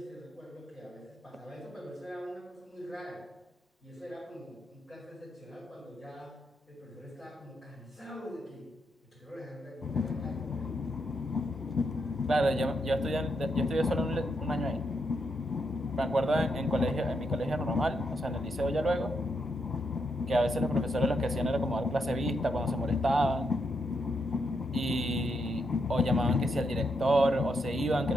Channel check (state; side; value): normal; both; correlation 0.80